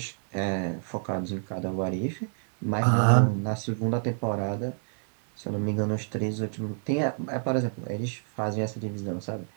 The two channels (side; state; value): left; silent; digital silence